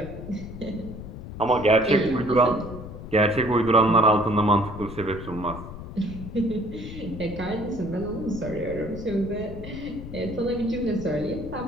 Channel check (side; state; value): left; noise; rumble, 11 dB below the sound